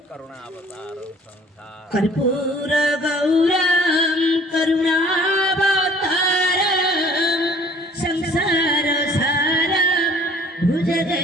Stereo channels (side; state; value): both; normal; correlation 0.53